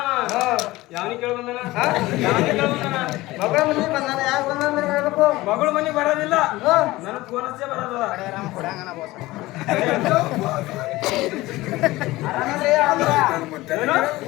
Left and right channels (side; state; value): right; quieter; 18.8 dB